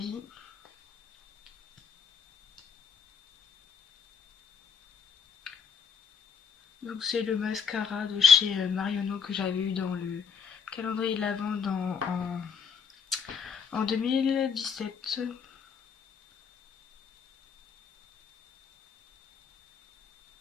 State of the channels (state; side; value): quieter; right; 6.8 dB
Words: Donc c'est le mascara de chez Marionneau que j'avais eu dans le calendrier de l'Avent en 2017.